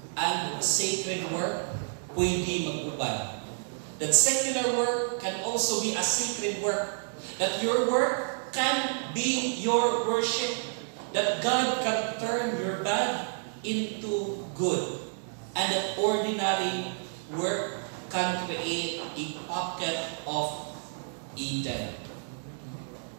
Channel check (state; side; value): silent; left; digital silence